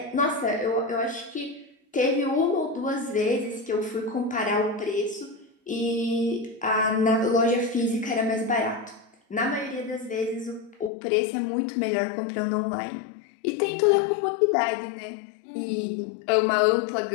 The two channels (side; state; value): right; drops out; at 10.9 s